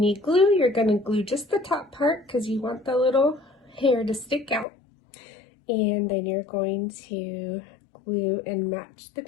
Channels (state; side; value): drops out; right; at 4.7 s